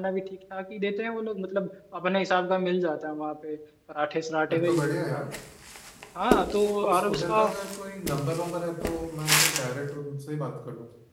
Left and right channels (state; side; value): identical; both; correlation 1.00